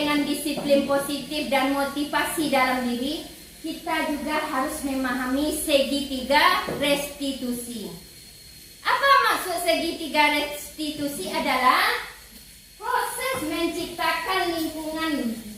disiplin positif dan motivasi dalam diri. Kita juga harus memahami segitiga restitusi. Apa maksud segitiga restitusi? Adalah proses menciptakan lingkungan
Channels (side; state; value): both; identical; correlation 1.00